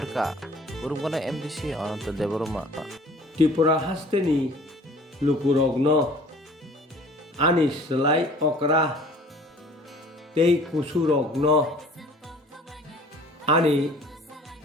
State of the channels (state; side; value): normal; both; correlation 0.50